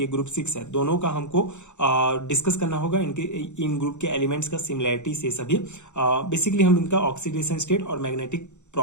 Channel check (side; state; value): right; late; 0.84 ms